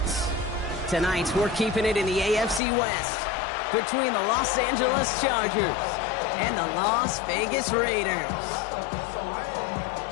Tonight, we're keeping it in the AFC West between the Los Angeles Chargers and the Las Vegas Raiders.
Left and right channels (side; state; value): right; drops out; at 2.6 s